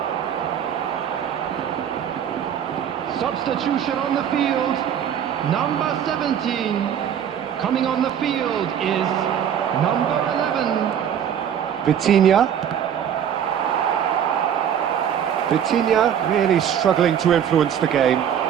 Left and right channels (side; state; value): left; quieter; 9.0 dB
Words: Substitution on the field. Number 17. Coming on the field is number 11. Vitinha. Vitinha really struggling to influence the game.